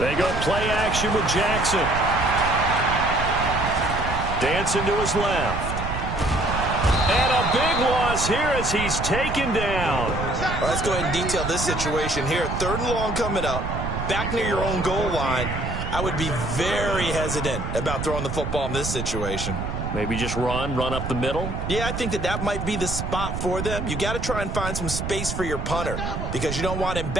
go play action with Jackson. Dancing to his left. And a big loss here as he's taken down. Well, let's go ahead and detail this situation here. 3rd and long coming up. Back near your own goal line. I would be very hesitant about throwing the football in this situation. Maybe just run up the middle? Yeah, I think that might be the spot for them. You got to try and find some space for your punter because you don't want him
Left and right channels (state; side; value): noise; right; rumble, 4 dB below the sound